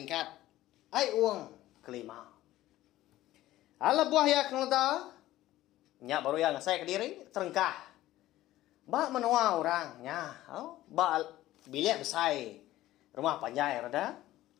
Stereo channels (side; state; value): right; quieter; 15.4 dB